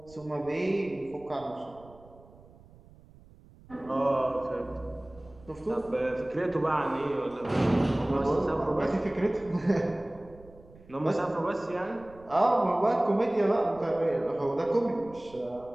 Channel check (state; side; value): noise; right; rumble, 23 dB below the sound